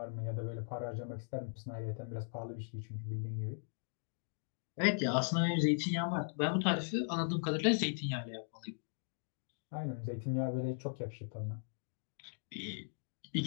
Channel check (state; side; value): silent; right; digital silence